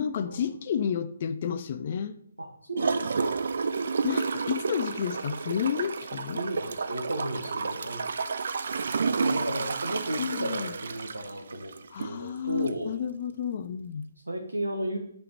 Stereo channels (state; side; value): inverted; both; correlation -0.74